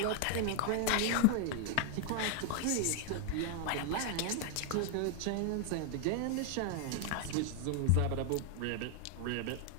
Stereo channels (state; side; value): different; both; correlation 0.00